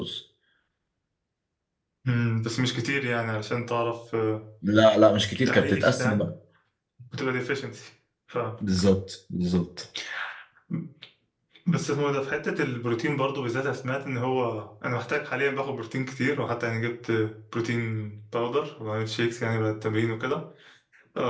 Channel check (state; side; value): identical; both; correlation 1.00